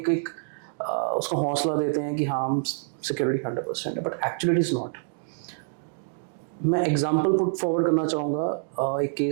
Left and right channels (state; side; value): silent; left; digital silence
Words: उसको हौसला देते हैं कि हाँ हम security 100% है, but actually it is not. मैं एग्जाम्पल पुट फॉरवर्ड करना चाहूँगा एक